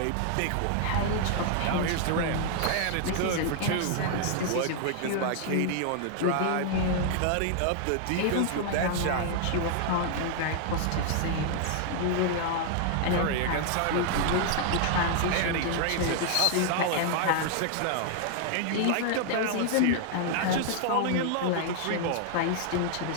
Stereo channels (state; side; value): different; both; correlation 0.00